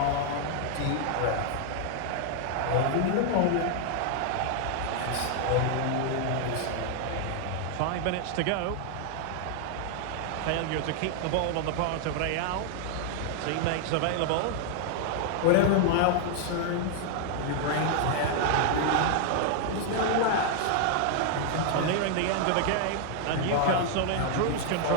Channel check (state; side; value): different; both; correlation 0.00